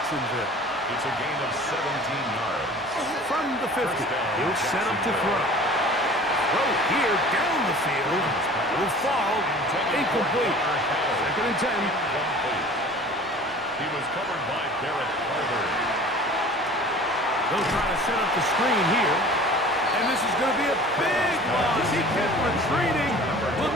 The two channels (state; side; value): normal; both; correlation 0.44